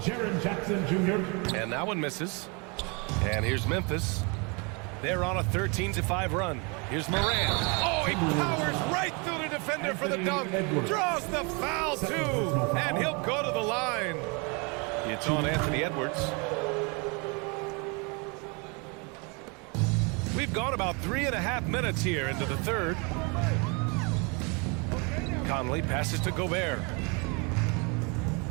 Jackson Jr. And that one misses. And here's Memphis. They're on a 13-5 run. Here's Moran. Oh, he powers right through the defender for the dunk. Draws the foul, too. And he'll go to the line. It's on Anthony Edwards. We've gone about 3.5 minutes here into the third. Conley passes to Gobert.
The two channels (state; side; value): quieter; left; 31.6 dB